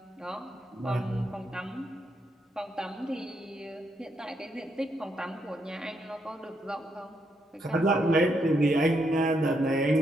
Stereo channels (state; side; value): normal; both; correlation 0.78